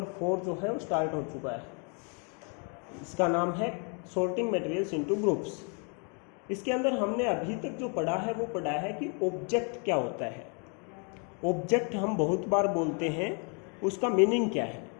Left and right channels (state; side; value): quieter; right; 37.5 dB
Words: 4 जो है वो स्टार्ट हो चुका है। इसका नाम है सॉर्टिंग मटेरियल्स इनटू ग्रुप्स। इसके अंदर हमने अभी तक जो पढ़ा है वो पढ़ा है कि ऑब्जेक्ट क्या होता है। ऑब्जेक्ट हम बहुत बार बोलते हैं, उसका मीनिंग क्या है।